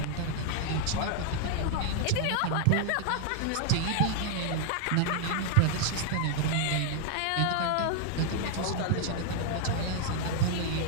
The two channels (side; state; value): both; different; correlation 0.00